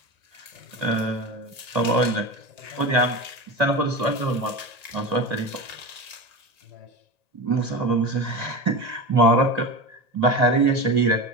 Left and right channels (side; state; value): left; late; 1.9 ms